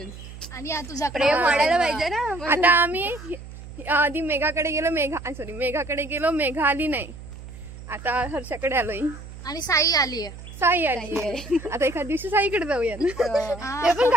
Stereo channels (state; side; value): noise; right; hum, 14 dB below the sound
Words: आणि तुझ्याकडे वाढायला पाहिजे ना. आता आम्ही आधी मेघाकडे गेलो, मेघाकडे गेलो, मेघा आली नाही. आता हर्षाकडे आलोय आणि साई आली आहे. आता एखाद दिवशी साईकडे जाऊया. ते पण